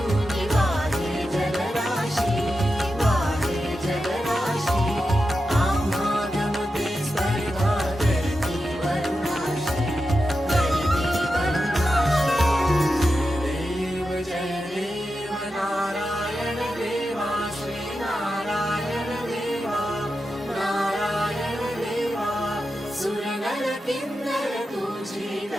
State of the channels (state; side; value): normal; both; correlation 0.90